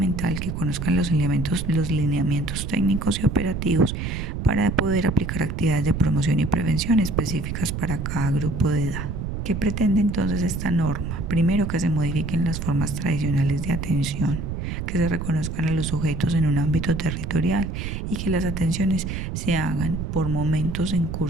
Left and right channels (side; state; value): right; noise; rumble, 4 dB below the sound